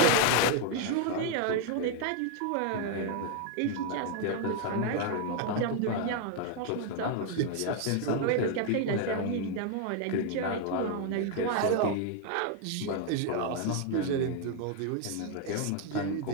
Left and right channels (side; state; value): both; different; correlation 0.01